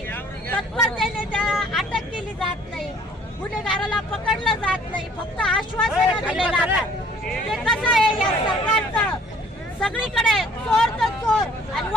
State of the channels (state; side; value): normal; both; correlation 0.57